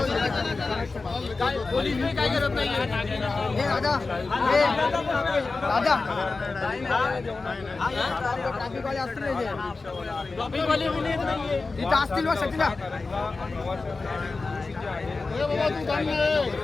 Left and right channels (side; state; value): right; quieter; 3.8 dB